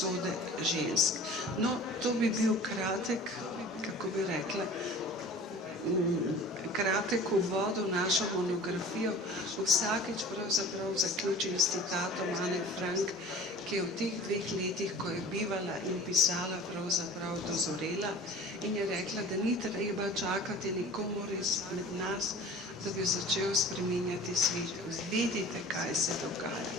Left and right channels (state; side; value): normal; both; correlation 0.42